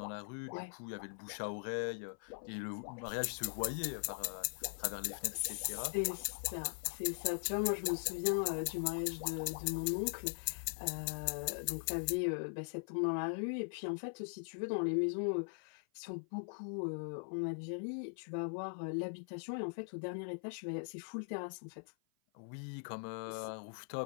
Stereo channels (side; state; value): right; silent; 51 dB below the other